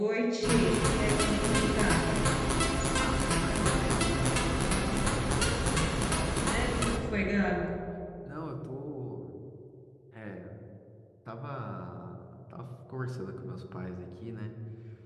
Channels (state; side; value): identical; both; correlation 1.00